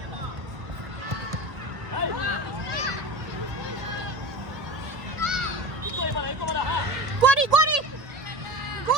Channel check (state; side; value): late; left; 1.6 ms